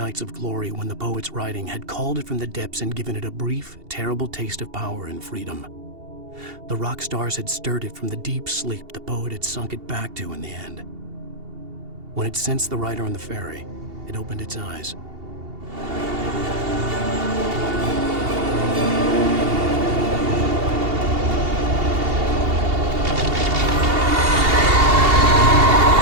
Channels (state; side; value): late; left; 2.8 ms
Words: of glory when the poet's writing had called it from the depths and given it a brief, terrible taste of power and freedom. The rock stars had stirred it from the deep sleep the poet had sunk it back to in the end. When it sensed the writer on the ferry, it opened its eyes.